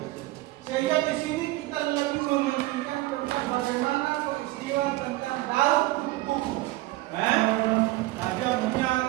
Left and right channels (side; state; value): left; quieter; 18.4 dB